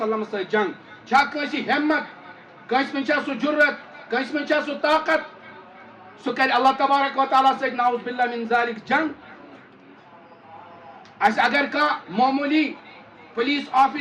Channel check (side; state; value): both; identical; correlation 1.00